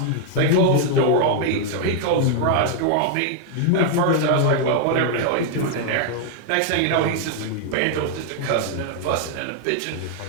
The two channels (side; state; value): both; different; correlation 0.00